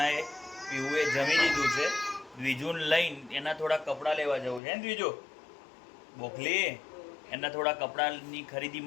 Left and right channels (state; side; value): drops out; right; at 4.6 s